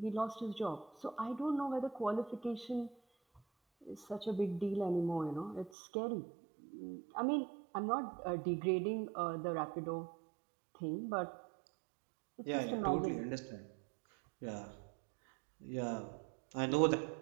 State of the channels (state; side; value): drops out; left; at 5.7 s